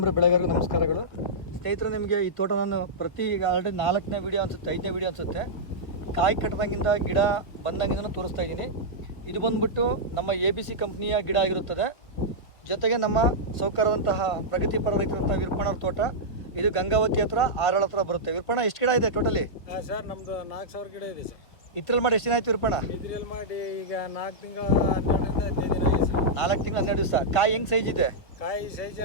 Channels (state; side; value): late; right; 1.6 ms